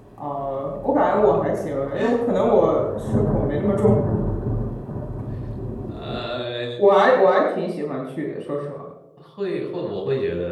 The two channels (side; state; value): both; identical; correlation 1.00